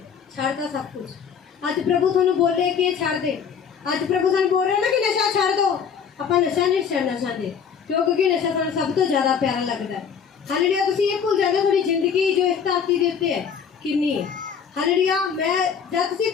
छड़ता सब कुछ। आज प्रभु तुहानू बोले कि ये छड़ दे, आज प्रभु तुहानू बोल रहे ना कि नशा छड़ दो। ਆਪਾਂ नशा नहीं छड़ना चाहते क्योंकि नशा सानू सब तो ज्यादा प्यारा लगता है। हालेलुया। तुसीं ये भूल जाते थोड़ी जिंदगी जो इस धरती के उत्ते है कितनी है। हालेलुया। मैं जब तुसीं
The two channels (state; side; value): quieter; right; 7.0 dB